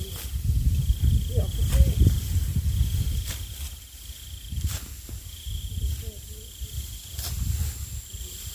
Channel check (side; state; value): both; identical; correlation 1.00